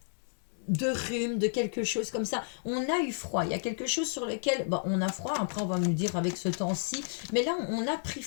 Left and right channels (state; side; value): silent; right; digital silence